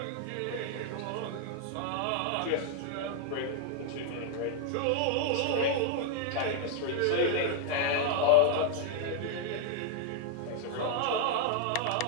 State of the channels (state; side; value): different; both; correlation 0.00